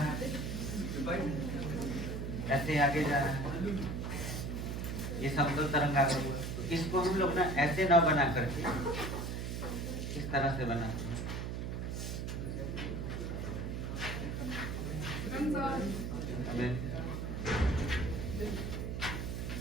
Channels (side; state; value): right; noise; hum, 3 dB below the sound